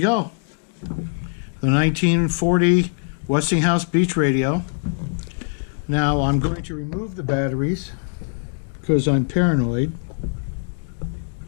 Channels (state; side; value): silent; right; 64 dB below the other